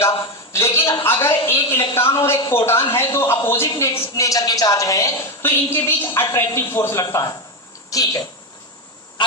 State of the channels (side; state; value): both; normal; correlation 0.11